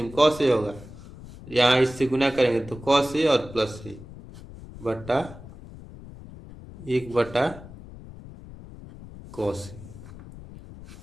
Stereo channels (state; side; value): noise; left; rumble, 16 dB below the sound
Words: कॉस ए होगा, यहाँ इससे गुना करेंगे तो कॉस ए और प्लस ए बटा 1 बटा कॉस ए